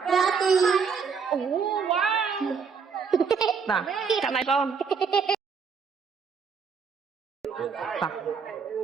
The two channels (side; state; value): left; quieter; 5.9 dB